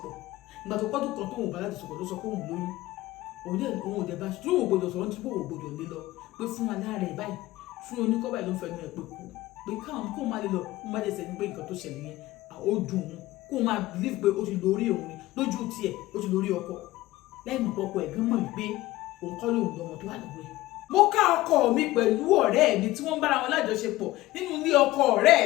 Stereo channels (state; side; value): quieter; right; 17.5 dB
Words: ìgbà tó pọ́dún kan tó òun bá lájọṣepọ̀ ló sọ pé òun lóyún òun ò dẹ̀ bá tí òun gbọdọ̀ sọ̀rọ̀ nítorí òun gbọdọ̀ lé lọ pé fún aláàrẹ̀ báyìí fún oníkọ́ báyìí ló ń fẹnu ẹ̀ pé kú pé káwọn kó má lè lọ kó má lè sẹ́ni pé nǹkan tó ṣẹlẹ̀ yẹn ó dùn òun kó má believe pé ó ti lórí òun ni lójú tiẹ̀ ó ti lórí ọkọ lẹ́yìn mọ̀ ọkọ ẹ̀ gan mọ̀ wípé òun kọ́ lóun lọ́mọ tó wà lọ́wọ́ ẹ̀. mo ká ọkọ mi pẹ̀lú ọ̀rẹ́ mi tí wọ́n ń bára wọn lájọṣepọ̀ nínú ilé ọkọ